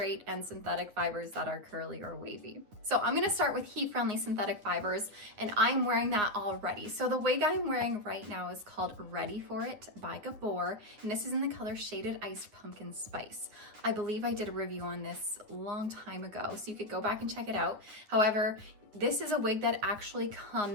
and synthetic fibers that are curly or wavy. So I'm gonna start with heat-friendly synthetic fibers, and I'm wearing that already. So the wig I'm wearing right now is called Ready For It by Gabor, and this is in the color Shaded Iced Pumpkin Spice. I believe I did a review on this a long time ago, so you could go back and check it out. However, this is a wig that actually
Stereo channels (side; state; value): left; late; 9.8 ms